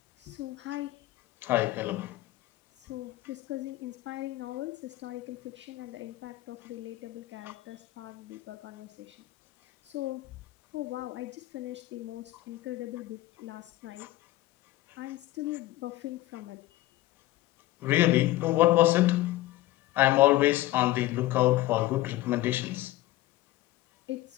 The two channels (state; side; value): quieter; right; 16.7 dB